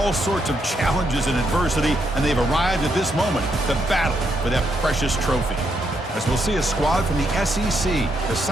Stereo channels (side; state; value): both; normal; correlation 0.78